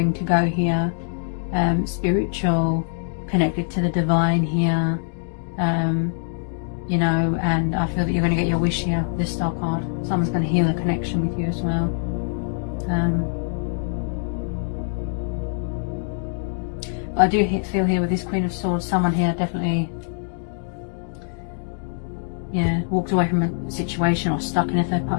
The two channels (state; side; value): silent; right; 63 dB below the other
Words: to go here. Spiritual, connected to the divine here. You know, and I feel that you're going to get your wish here with this star card. Someone's going to heal a connection with you as well. But I do feel here with this Queen of Swords, someone here definitely, yeah, walked away from a situation or stuck in a third